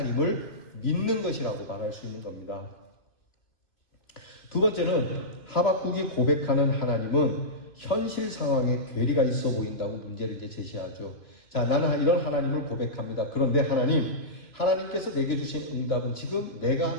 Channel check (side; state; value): right; late; 2.9 ms